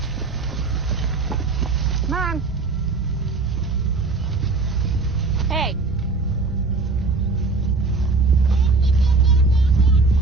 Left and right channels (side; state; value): left; quieter; 3.9 dB